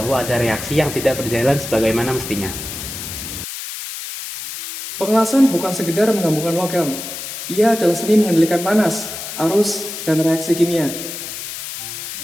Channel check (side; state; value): left; noise; hiss, 8 dB below the sound